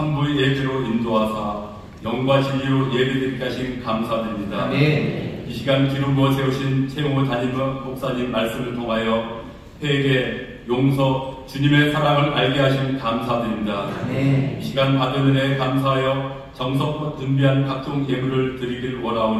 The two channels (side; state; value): both; identical; correlation 1.00